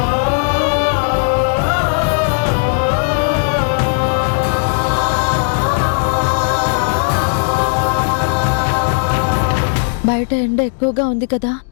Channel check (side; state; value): right; silent; 68 dB below the other